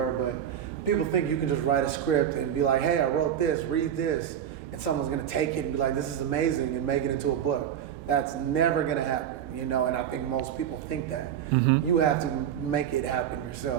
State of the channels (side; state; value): left; quieter; 9.7 dB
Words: but people think you can just write a script and be like, hey, I wrote this, read this, and someone's gonna take it and be like, this is amazing, and make it into a book. That's never gonna happen, and I think most people think that. Mm-hmm. You have to make it happen